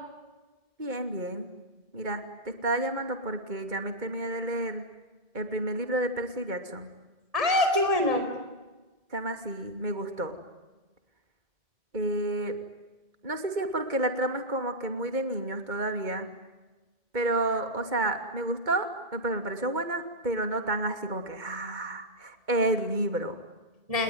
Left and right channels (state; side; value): late; left; 2.2 ms